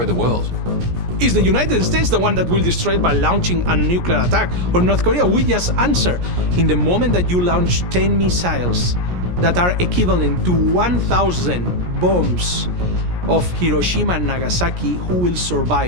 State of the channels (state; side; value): late; left; 17 ms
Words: the world? Is the United States the one that will destroy it by launching a nuclear attack? Or North Korea? We just answer. In the moment that you launch 10 missiles that are equivalent to 1,000 bombs of Hiroshima and Nagasaki, who will